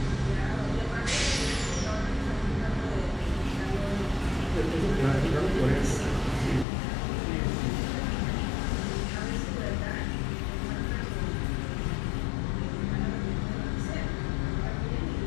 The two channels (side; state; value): right; drops out; at 6.7 s